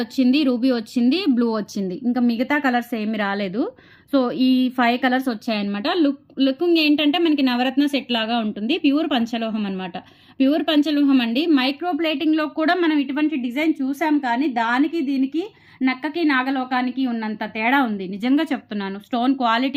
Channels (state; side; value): identical; both; correlation 1.00